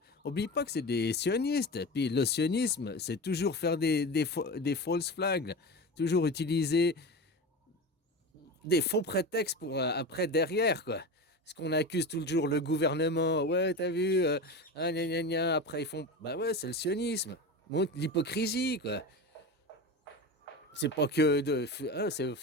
Oublie pas que c'est des sionistes. Puis le sionisme, c'est toujours faire des false flags, toujours utiliser des faux prétextes pour après derrière, quoi. Parce qu'on accuse toujours le gouvernement. Ouais, t'as vu, ah, gna, gna, gna. Après ils font, bah ouais, c'est le sionisme. Montre l'hypocrisie, quoi. C'est pas que de, hein,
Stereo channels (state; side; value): normal; both; correlation 0.26